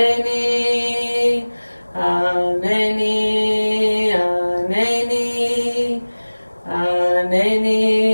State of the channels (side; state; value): both; inverted; correlation -1.00